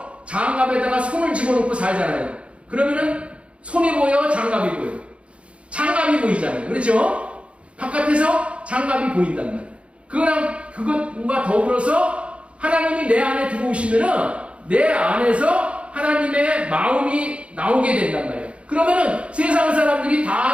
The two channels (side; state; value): left; late; 0.060 ms